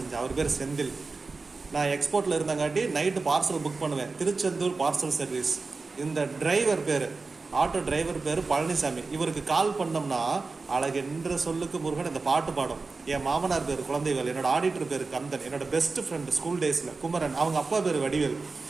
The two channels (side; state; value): left; quieter; 4.0 dB